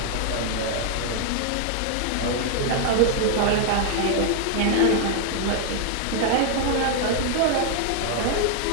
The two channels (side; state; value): both; different; correlation 0.00